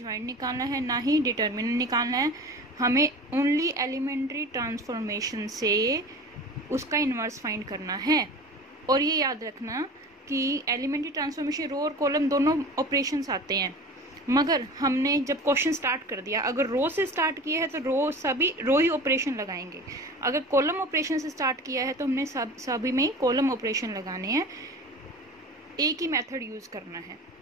निकालना है ना ही डिटर्मिनेंट निकालना है। हमें ओनली एलिमेंट्री ट्रांसफॉर्मेशन से उसका इनवर्स फाइंड करना है। और ये याद रखना कि एलिमेंट्री ट्रांसफॉर्मेशन रो और कॉलम दोनों ऑपरेशंस आते हैं। मगर हमने जब क्वेश्चन स्टार्ट कर दिया, अगर रो से स्टार्ट किया है तो रो ही ऑपरेशन लगाएंगे। अगर कॉलम ऑपरेशन से स्टार्ट किया है तो हमने सभी में कॉलम ऑपरेशन लगाने हैं। एक ही मेथड यूज करना है,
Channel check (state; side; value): normal; both; correlation 0.36